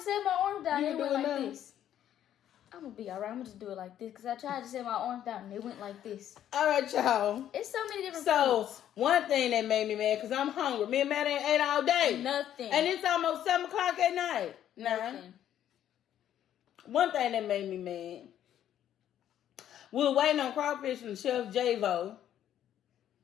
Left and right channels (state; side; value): quieter; right; 10.9 dB